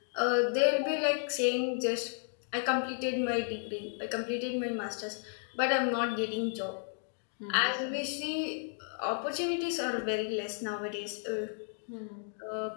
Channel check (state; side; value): silent; right; 56 dB below the other